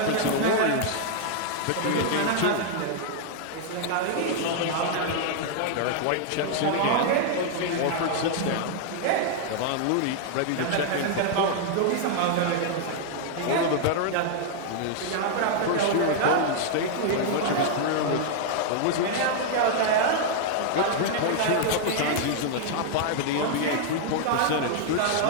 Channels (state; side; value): different; both; correlation -0.01